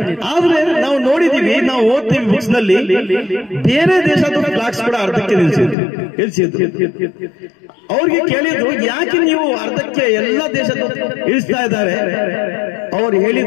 ಆದ್ರೆ ನಾವು ನೋಡಿದೀವಿ, ನಾವು ಓದ್ತೀವಿ ಬುಕ್ಸ್ ನಲ್ಲಿ, ಬೇರೆ ದೇಶದ ಫ್ಲಾಗ್ಸ್ ಕೂಡ ಅರ್ಧಕ್ಕೆ ಇಳಿಸಿದ್ರು. ಅವ್ರಿಗೆ ಕೇಳಿದ್ರು, ಯಾಕೆ ನೀವು ಅರ್ಧಕ್ಕೆ ಎಲ್ಲ ದೇಶದ ಇಳಿಸ್ತಾ ಇದ್ದಾರೆ? ಅವ್ರು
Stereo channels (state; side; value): drops out; right; at 5.8 s